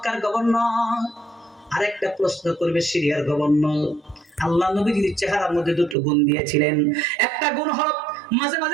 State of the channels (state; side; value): drops out; left; at 6.0 s